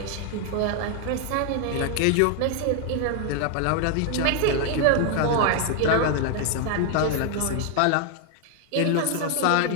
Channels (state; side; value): different; both; correlation 0.01